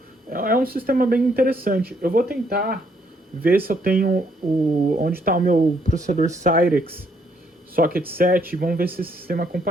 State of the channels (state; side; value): normal; both; correlation 0.70